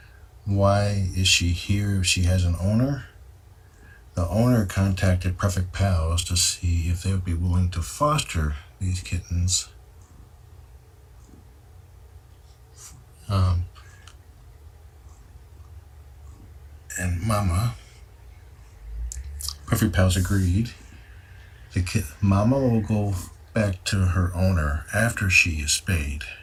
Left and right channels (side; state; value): both; identical; correlation 1.00